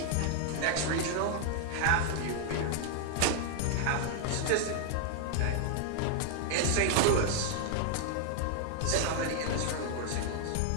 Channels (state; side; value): different; both; correlation 0.00